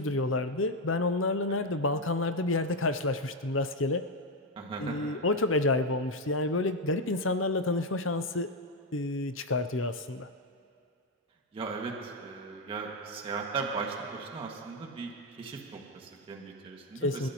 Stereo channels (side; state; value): both; normal; correlation 0.05